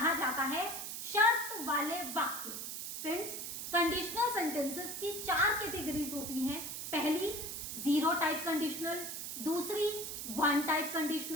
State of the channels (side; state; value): right; noise; hiss, 6 dB below the sound